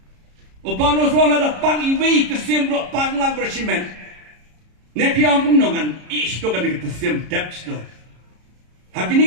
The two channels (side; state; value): left; late; 33 ms